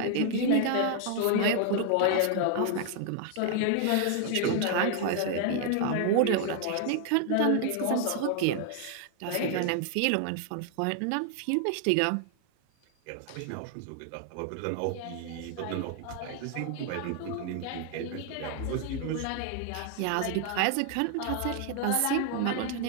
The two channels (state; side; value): different; both; correlation 0.00